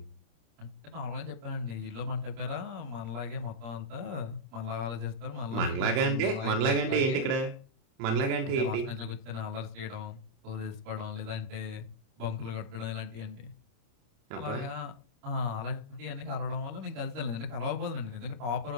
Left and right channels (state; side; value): late; left; 29 ms